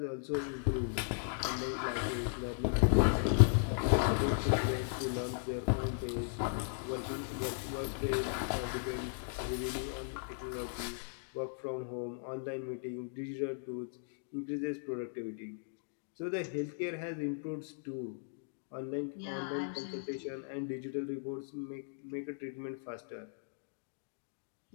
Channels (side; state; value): right; silent; digital silence